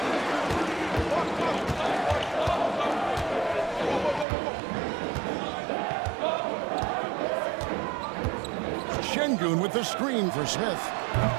Şengün with the screen for Smith.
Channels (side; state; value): left; drops out; at 4.2 s